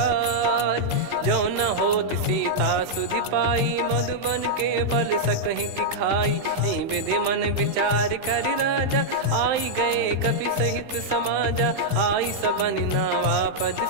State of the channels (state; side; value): late; left; 15 ms